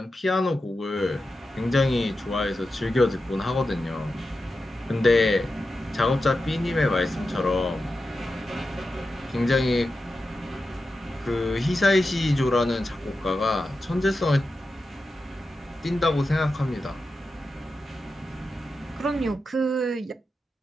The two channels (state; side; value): normal; both; correlation 0.91